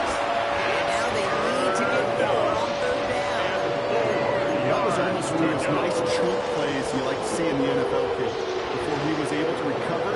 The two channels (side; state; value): both; identical; correlation 1.00